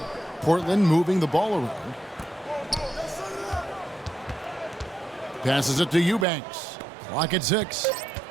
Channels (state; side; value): drops out; left; at 6.2 s